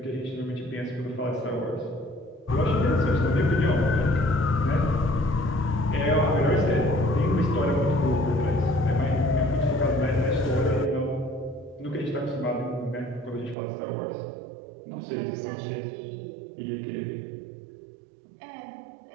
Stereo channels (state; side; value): drops out; left; at 13.6 s